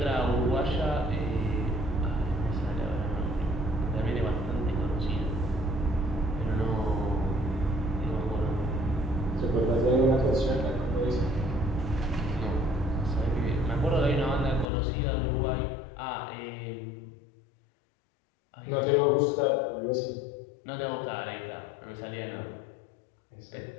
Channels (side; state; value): right; drops out; at 14.7 s